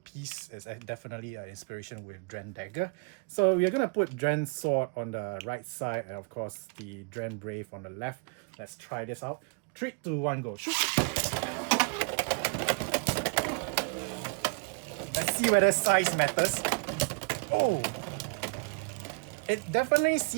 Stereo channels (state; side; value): quieter; left; 34.4 dB